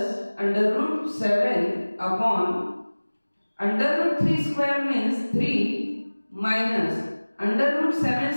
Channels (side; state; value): both; inverted; correlation -1.00